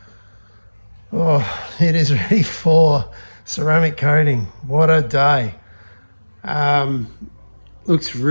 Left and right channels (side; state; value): both; inverted; correlation -1.00